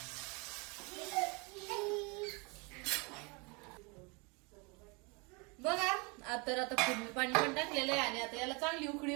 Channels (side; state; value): left; quieter; 30.2 dB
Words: आता फोडणी पाणी पण टाकलेलं आहे आणि आता याला चांगली उकळी